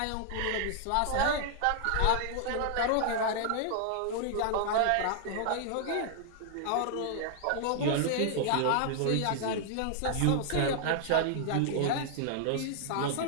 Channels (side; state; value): both; different; correlation 0.00